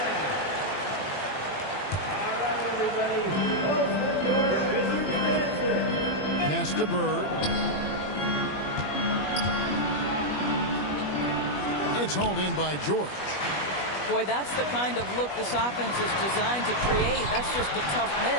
Pass to Bird. It's hauled in by George. Boy, that's the kind of look this offense is designed to create. That's just a tough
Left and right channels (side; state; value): right; late; 21 ms